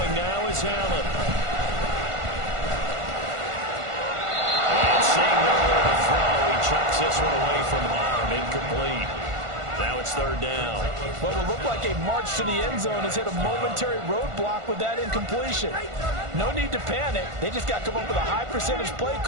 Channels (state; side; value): late; left; 1.5 ms